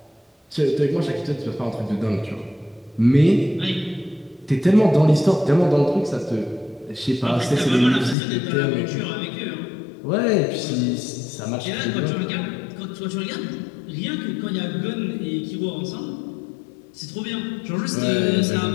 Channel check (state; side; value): drops out; right; at 8.2 s